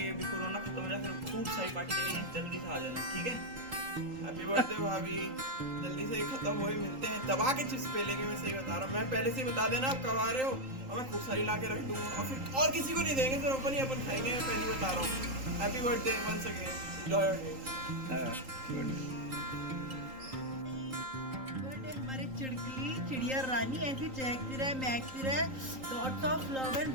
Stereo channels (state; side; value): late; left; 3.8 ms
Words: अभी कोरोना खत्म हो जाए फिर खूब सारी पार्टी करेंगे, जल्दी से आ जाना, ठीक है? हैप्पी बर्थडे भाभी, जल्दी से ही खत्म हो ही मिलते हैं, दबा के चिप्स पे लेंगे, मैं सही बता रहा हूँ। मैं पहले से ही बता देना आप कब आ रहे हो, और मैं खूब सारी ला के रख दूँगा और फिर और किसी को नहीं देंगे, सिर्फ अपन ही अपन खाएंगे, मैं पहले ही बता रहा हूँ। Happy birthday once again, enjoy your day. हमारे चिड़कली चिड़िया रानी ऐसी चहकती रहे, महकती रहे, lots of love and